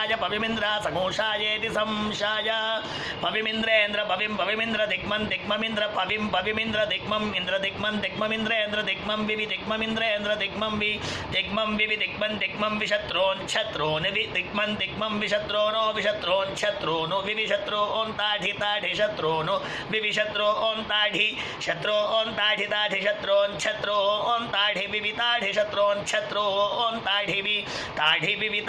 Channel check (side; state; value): both; identical; correlation 1.00